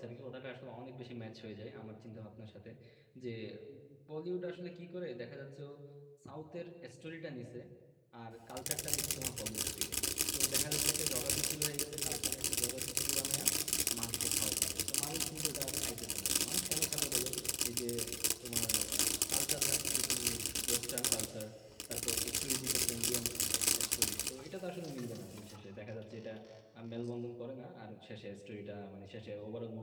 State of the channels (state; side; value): identical; both; correlation 1.00